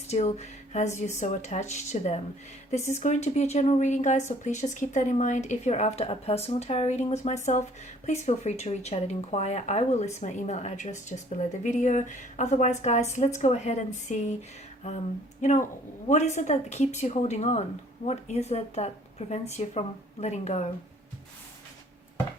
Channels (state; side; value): normal; both; correlation 0.57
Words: has you so attached to them. This is going to be a general reading, guys, so please just keep that in mind. If you're after a personal tarot reading with myself, please feel free to reach out and inquire. I will list my email address just below the video. Otherwise, guys, let's go ahead and see, what is it that keeps you holding on? What is it that prevents you from letting go?